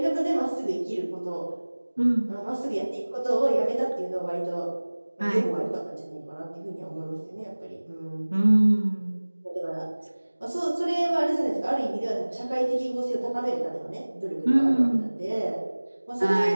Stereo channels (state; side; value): inverted; both; correlation -1.00